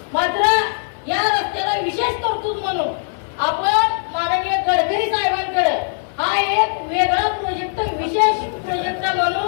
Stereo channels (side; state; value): right; silent; digital silence